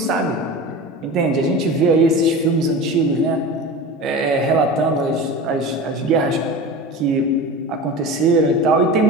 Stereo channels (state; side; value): normal; both; correlation 0.31